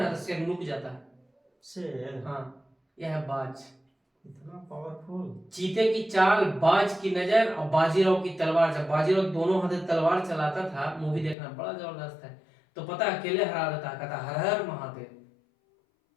ना तो शेर नुक जाता है। शेर, हाँ यह है बाज, इतना पावरफुल। चीते की चाल, बाज की नजर और बाजीराव की तलवार। जब बाजीराव दोनों हाथ तलवार चलाता था, मूवी देखना बड़ा जबरदस्त है, तो पता अकेले हरा देता, कहता हर हर महादेव।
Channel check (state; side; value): drops out; right; at 11.4 s